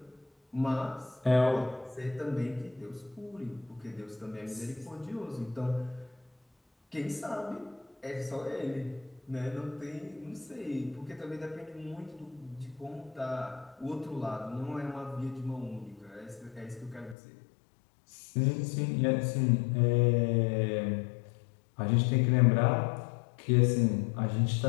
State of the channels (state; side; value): drops out; right; at 17.2 s